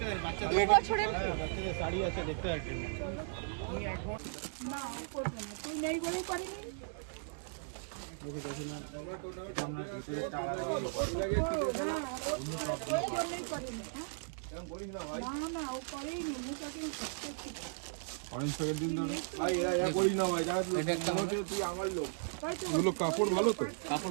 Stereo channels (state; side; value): silent; left; digital silence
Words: 2 বছরের শাড়ি আছে দেখতে পাচ্ছি না করবে না, তুই নেই বলেই পারিনি। না ও করেইনি, কাপড় ভালো তো,